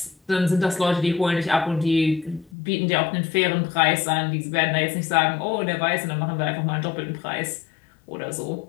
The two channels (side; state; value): right; drops out; at 2.5 s